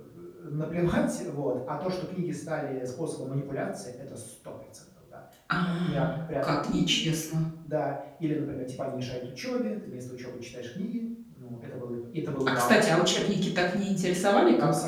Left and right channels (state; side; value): identical; both; correlation 1.00